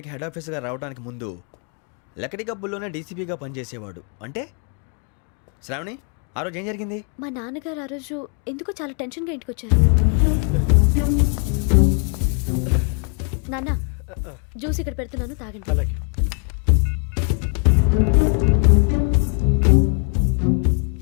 హెడ్ ఆఫీసర్గా రావడానికి ముందు లకడి కబ్బుల్లోనే డీసీపీగా పనిచేసేవాడు. అంటే శ్రావణి, ఆ రోజు ఏం జరిగింది? మా నాన్నగారు ఆ రోజు ఎందుకో చాలా టెన్షన్గా ఇంటికి వచ్చారు. నాన్న, జ్యూస్ ఇక్కడ పెడుతున్నాను, తాగండి. అలాగే.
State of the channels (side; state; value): right; quieter; 38.2 dB